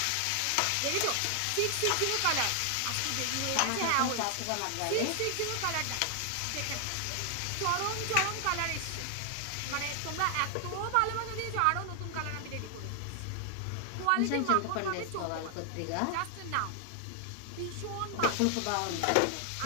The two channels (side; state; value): both; different; correlation 0.00